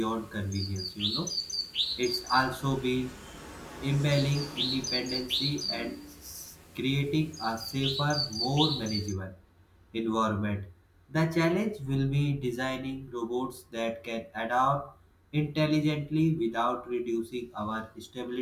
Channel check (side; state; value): both; identical; correlation 1.00